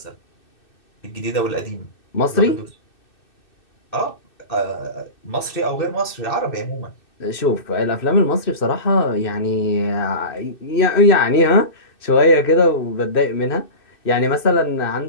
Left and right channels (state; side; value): late; right; 2.6 ms